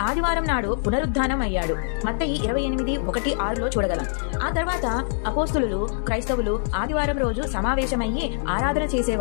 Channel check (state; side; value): silent; right; digital silence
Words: ఆదివారం నాడు పునరుద్ధానం అయ్యాడు. మత్తయి 28:1-6లో చూడగలం. ఆ తర్వాత అపోస్తులు క్రైస్తవులు ఆదివారం రోజు సమావేశమయ్యి ఆరాధన